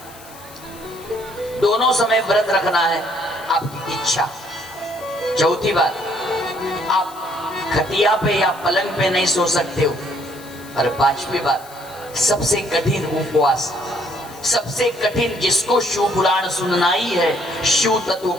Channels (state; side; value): noise; left; hiss, 20 dB below the sound